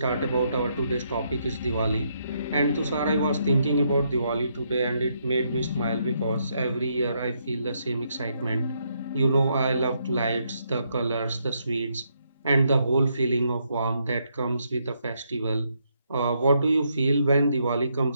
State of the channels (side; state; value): both; inverted; correlation -0.76